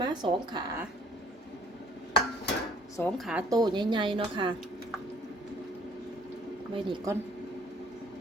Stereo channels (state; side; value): normal; both; correlation 0.58